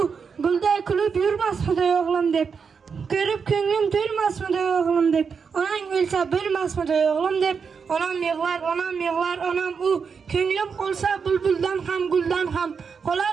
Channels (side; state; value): left; quieter; 5.9 dB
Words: gulday kulib yurmasmidi o'g'lim deb ko'rib ko'nglim to'lmasmidi o'g'lim deb onang o'lsa bo'lmasmidi o'g'lim deb onam yig'lar, onam u. Ko'nglim qolsa bulbuldan ham, guldan ham.